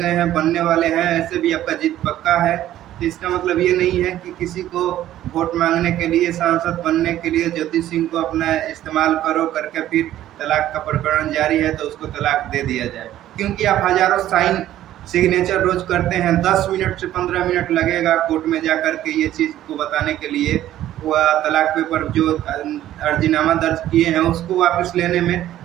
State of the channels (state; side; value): quieter; left; 13.0 dB